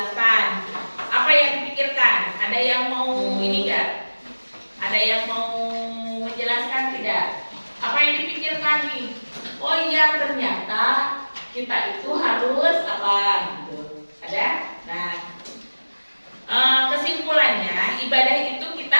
Apa yang dipikirkan? Ada yang mau ini enggak? Ada yang mau menjelaskan tidak? Apa yang dipikirkan nih? Oh iya, ternyata kita itu harus apa gitu. Ada? Nah, kesimpulannya ibadah itu kita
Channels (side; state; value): both; inverted; correlation -1.00